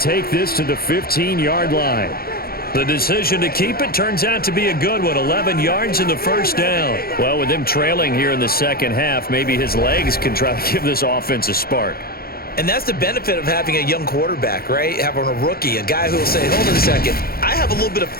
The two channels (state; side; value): late; right; 0.44 ms